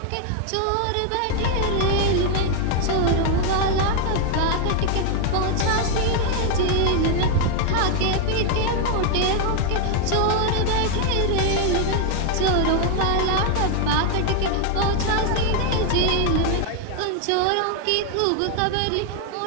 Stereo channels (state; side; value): different; both; correlation 0.00